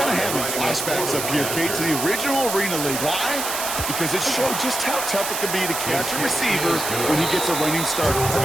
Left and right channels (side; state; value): right; noise; hiss, 4 dB below the sound